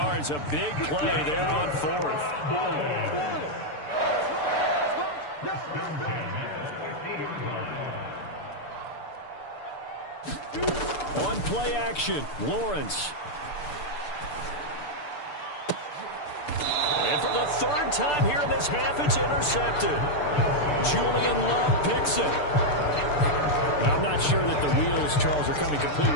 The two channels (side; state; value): right; late; 6.8 ms